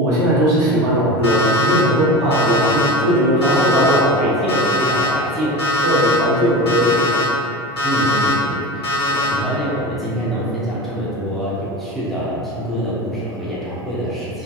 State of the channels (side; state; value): both; normal; correlation 0.29